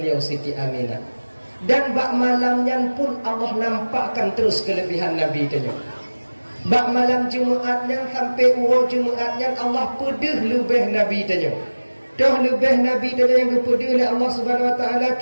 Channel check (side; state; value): both; inverted; correlation -1.00